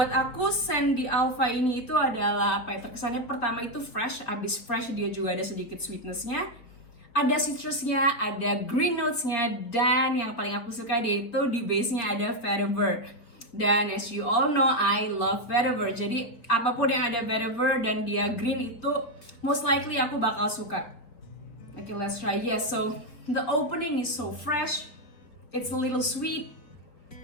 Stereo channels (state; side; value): late; right; 4.5 ms